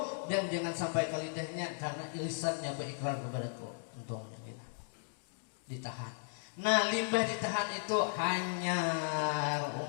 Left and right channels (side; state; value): right; silent; digital silence